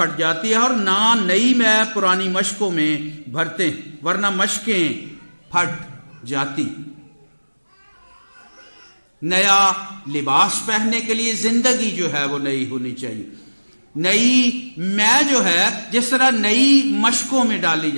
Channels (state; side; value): inverted; both; correlation -1.00